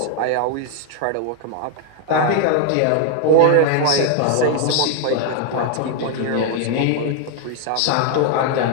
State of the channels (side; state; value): both; different; correlation 0.00